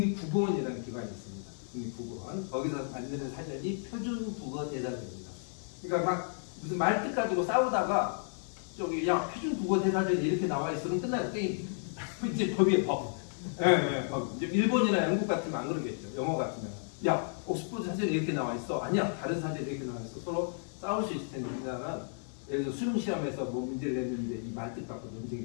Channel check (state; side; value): silent; right; 56 dB below the other